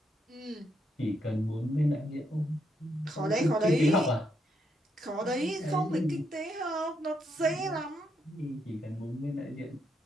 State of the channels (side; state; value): both; normal; correlation 0.78